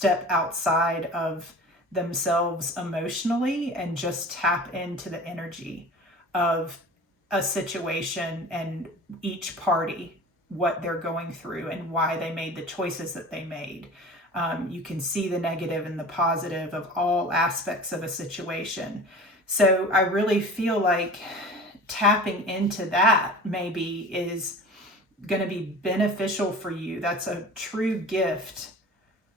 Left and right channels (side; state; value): both; normal; correlation 0.39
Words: outside of themselves emotionally and just tap into the energy of a situation and each party, what they're going through and why they made the choices that they made. You can see the negative and the positive of all aspects of a situation. So I really feel like tapping into that maybe is going to be beneficial for you. That's a true gift